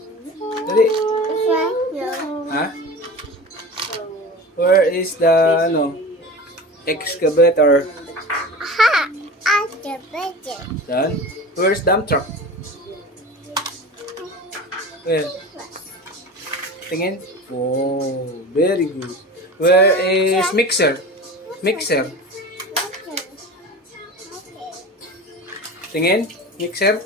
Dali. Ha? Where is the, excavator? Done. Where's dump truck? Where? Tingin. Oh, very good. Where is mixer? Mixer. Tingin. Mixer.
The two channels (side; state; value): both; normal; correlation 0.33